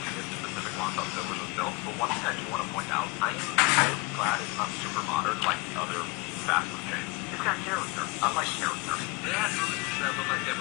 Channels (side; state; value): right; quieter; 24.8 dB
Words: this specific Long John Silver's was built, but one thing I do want to point out, I am really glad it's not super modern like other fast food chains. It's got character. I like character. They had booths that look like they